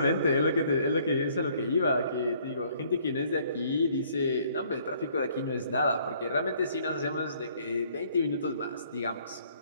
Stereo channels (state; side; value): inverted; both; correlation -0.62